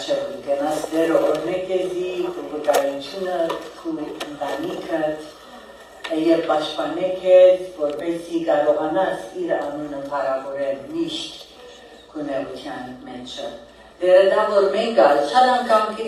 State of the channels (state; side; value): identical; both; correlation 1.00